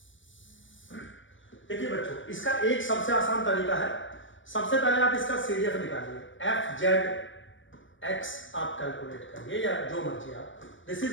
देखिए बच्चों, इसका एक सबसे आसान तरीका है। सबसे पहले आप इसका CDF निकालिए, fz x आप कैलकुलेट करिए या जो मर्जी आप। This is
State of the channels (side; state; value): right; late; 0.56 ms